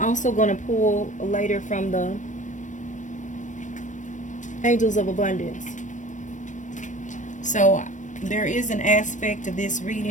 I'm also going to pull later from the angels of abundance. So there is an aspect of this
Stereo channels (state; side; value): late; right; 0.36 ms